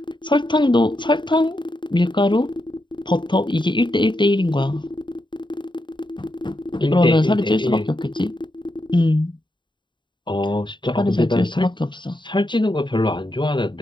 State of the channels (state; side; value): late; right; 0.23 ms